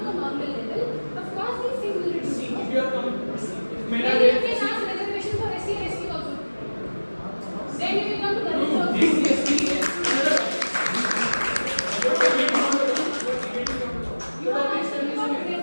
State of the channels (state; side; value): inverted; both; correlation -1.00